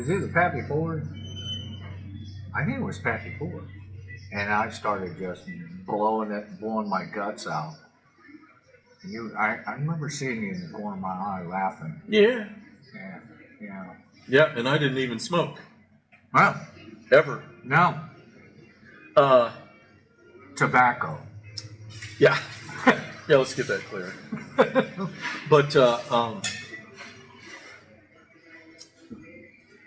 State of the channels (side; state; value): both; identical; correlation 1.00